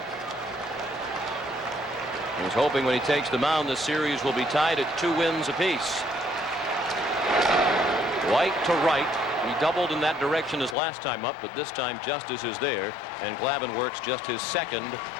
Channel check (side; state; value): right; drops out; at 10.8 s